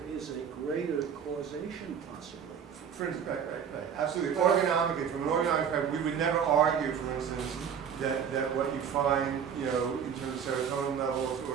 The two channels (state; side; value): quieter; left; 7.7 dB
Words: is a greater causation possibly. For instance, absolutely. Organomically, from an organomic perspective, we would never argue, for instance, that what you find, in terms of serotonin levels